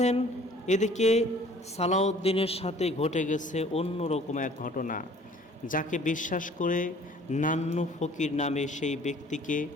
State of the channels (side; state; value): both; normal; correlation 0.53